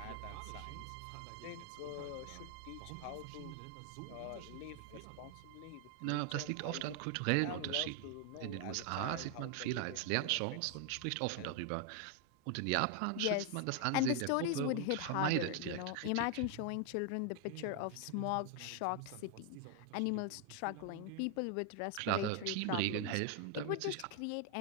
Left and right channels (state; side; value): different; both; correlation 0.00